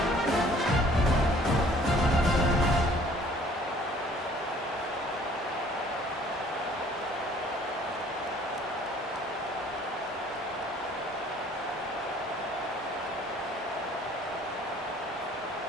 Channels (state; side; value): normal; both; correlation 0.55